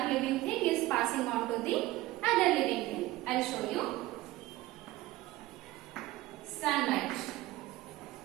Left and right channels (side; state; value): left; quieter; 17.4 dB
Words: living thing is passing on to the other living thing. I'll show you. Sunlight.